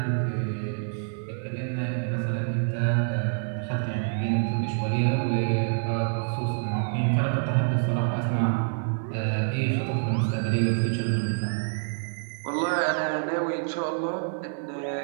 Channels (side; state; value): left; silent; digital silence